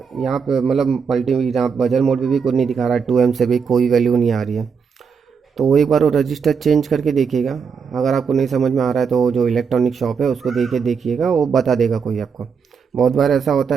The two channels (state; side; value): quieter; left; 6.1 dB